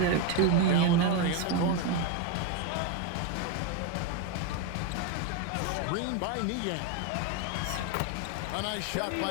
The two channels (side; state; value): both; different; correlation 0.02